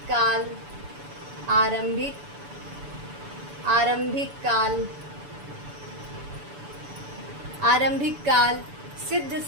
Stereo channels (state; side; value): late; left; 6.9 ms